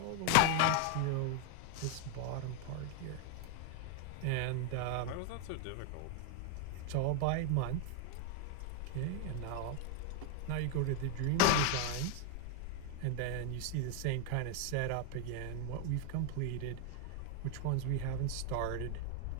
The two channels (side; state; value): both; different; correlation 0.00